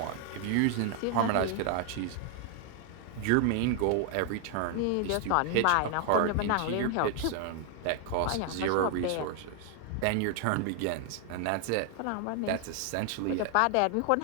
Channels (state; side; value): different; both; correlation 0.00